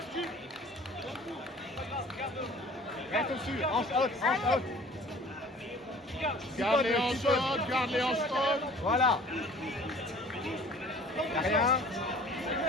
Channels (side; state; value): both; normal; correlation 0.49